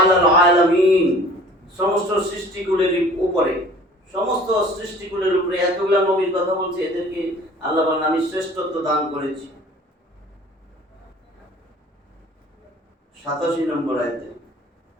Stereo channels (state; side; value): normal; both; correlation 0.48